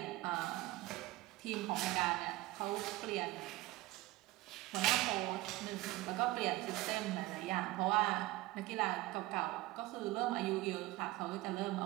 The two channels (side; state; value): left; quieter; 18.9 dB